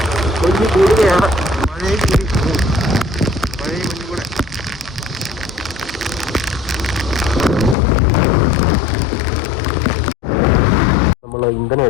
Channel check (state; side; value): drops out; right; at 7.8 s